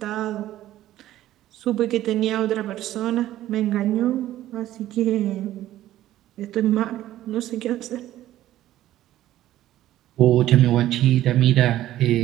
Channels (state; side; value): quieter; left; 13.8 dB